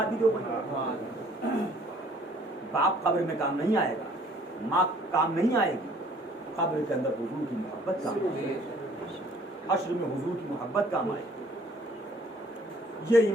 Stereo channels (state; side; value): normal; both; correlation 0.57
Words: بھی دو. باپ قبر میں کام نہیں آئے گا, ماں کام نہیں آئے گی, قبر کے اندر حضور کی محبت کام آئے گی, حشر میں حضور کی محبت کام آئے گی. یہ